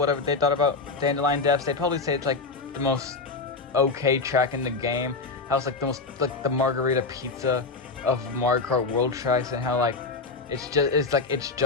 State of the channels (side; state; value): right; quieter; 4.1 dB